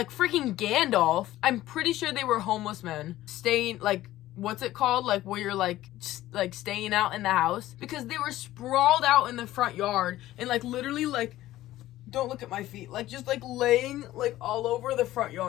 Gandalf. I'm pretty sure they were homeless men staying, like, what's it called? Like, where you're, like staying out in the house. Because they were sprawled out in the front yard and, like, literally, like, don't look at my feet. Like, just, like, laying, like, all over the front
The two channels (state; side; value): quieter; right; 15.2 dB